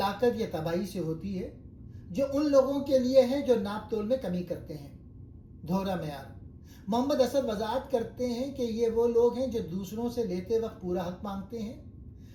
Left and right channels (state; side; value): identical; both; correlation 1.00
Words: या तबाही से होती है जो उन लोगों के लिए है जो नापतोल में कमी करते हैं। दोहरा मेयार। मोहम्मद असद वजाहत करते हैं कि ये वो लोग हैं जो दूसरों से लेते वक्त पूरा हक मांगते